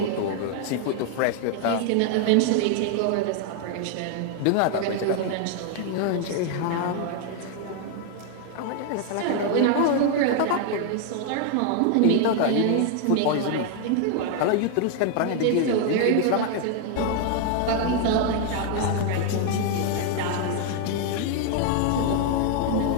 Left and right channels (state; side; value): different; both; correlation 0.00